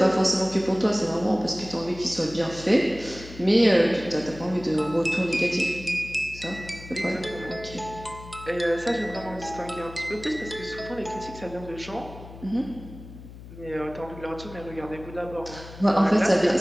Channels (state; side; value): noise; left; hum, 15 dB below the sound